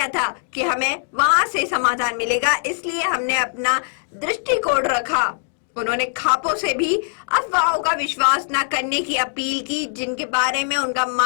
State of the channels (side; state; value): right; silent; digital silence